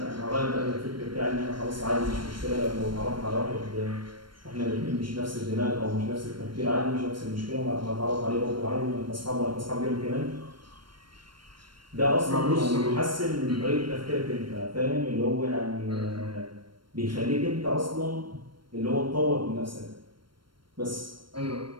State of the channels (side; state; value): left; late; 0.72 ms